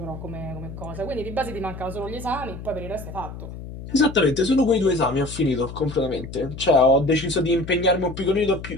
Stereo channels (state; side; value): noise; left; hum, 11 dB below the sound